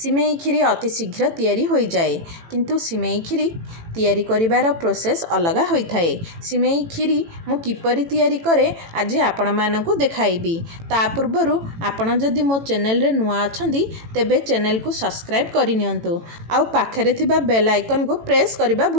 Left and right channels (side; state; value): left; late; 18 ms